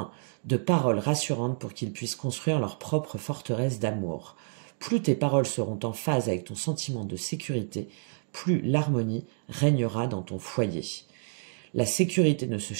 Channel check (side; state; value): left; silent; digital silence